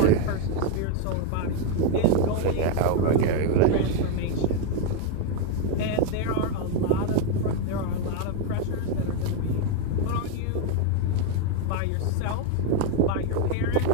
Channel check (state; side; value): different; both; correlation 0.01